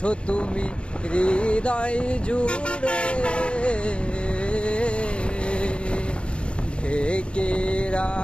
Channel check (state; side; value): late; right; 0.057 ms